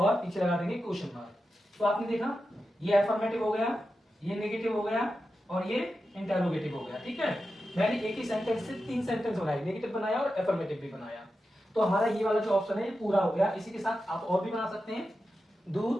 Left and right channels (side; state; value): both; normal; correlation 0.90